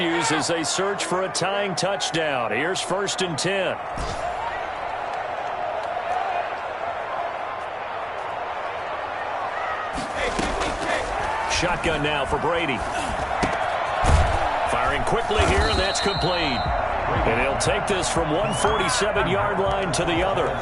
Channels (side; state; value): both; identical; correlation 1.00